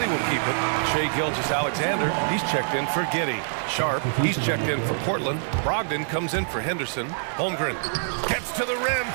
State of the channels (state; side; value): silent; left; 60 dB below the other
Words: will keep it. Shai Gilgeous-Alexander, he's checked in for Giddey. Sharp, he's checked in for Portland. Brogdon comes in for Henderson. Holmgren gets to the rim